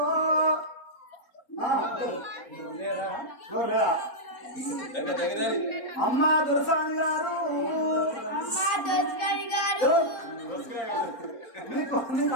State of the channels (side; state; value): right; late; 3.9 ms